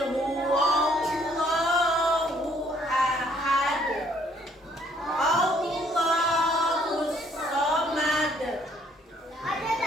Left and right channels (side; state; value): both; normal; correlation 0.64